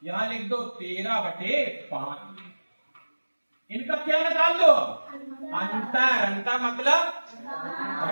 यहां लिख दो 13/5। इनका क्या निकाल लो? अंतर। अंतर मतलब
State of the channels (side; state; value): both; inverted; correlation -1.00